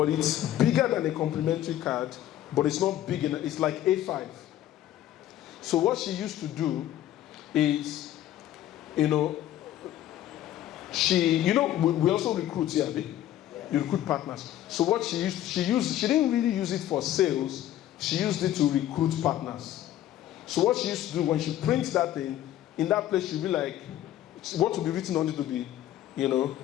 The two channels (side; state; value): right; quieter; 12.7 dB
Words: it's bigger than a complimentary card, but it's not big enough. It's like A5. So what she used to do is, we also recruit here. You recruit partners. So what she didn't really use it for sales. She used it to recruit partners. So what she used to do when she prints that thing, in that place she'll be like, what will be written on it to be,